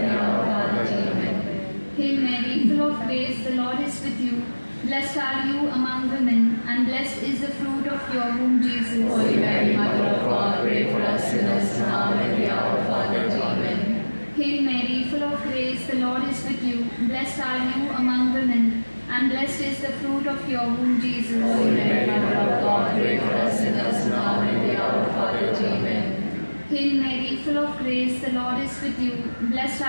hour of our death. Amen. Hail Mary, full of grace, the Lord is with you. Blessed are you among women, and blessed is the fruit of your womb, Jesus. Holy Mary, Mother of God, pray for us sinners, now and at the hour of our death. Amen. Hail Mary, full of grace, the Lord is with you. Blessed are you among women, and blessed is the fruit of your womb, Jesus. Holy Mary, Mother of God, pray for us sinners, now and at the hour of our death. Amen. Hail Mary, full of grace, the Lord is with you. Blessed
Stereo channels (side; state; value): both; inverted; correlation -1.00